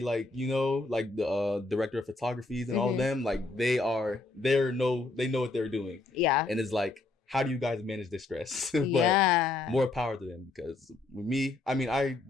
you know, like the director of photographies and all of them, like they know what they're doing. Yeah. And it's like, how do you guys manage this stress? But more power to them, because with me, I mean, I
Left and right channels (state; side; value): quieter; right; 3.4 dB